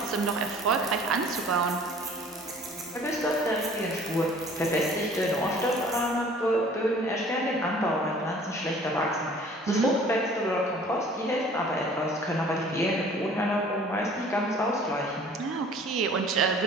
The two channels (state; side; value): normal; both; correlation 0.51